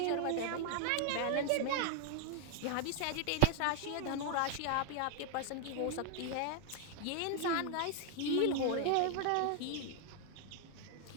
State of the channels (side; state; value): both; different; correlation 0.01